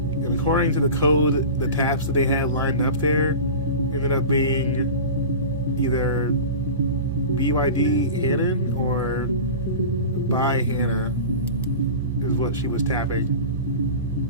according to the code, the taps that they had lined up there ended up being either BYD Hannon or by Hannah is what she was tapping.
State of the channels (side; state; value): both; inverted; correlation -0.32